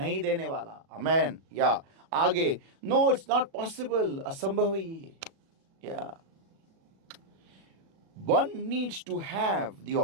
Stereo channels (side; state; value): left; late; 37 ms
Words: देने वाला। आमेन। या आगे, नो इट्स नॉट पॉसिबल, असंभव है ये। या one needs to have the